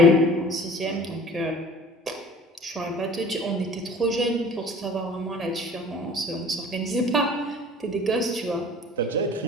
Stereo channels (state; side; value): normal; both; correlation 0.46